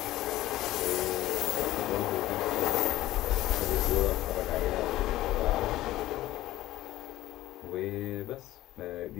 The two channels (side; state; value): right; quieter; 15.7 dB